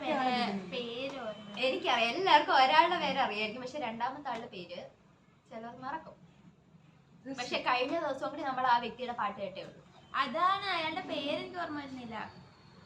പേര് എനിക്കറിയാം, എല്ലാവർക്കും ഒരാളുടെ പേര് അറിയായിരിക്കും, പക്ഷെ രണ്ടാമത്തെ ആളുടെ പേര് ചിലർ മറക്കും. പക്ഷെ കഴിഞ്ഞ ദിവസം കൂടി നമ്മൾ ആ വ്യക്തിയുടെ പാട്ട് കേട്ടേ ഉള്ളൂ. അതാണ് അയാളുടെ പേരെനിക്ക് ഓർമ്മ വരുന്നില്ല.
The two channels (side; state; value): both; identical; correlation 1.00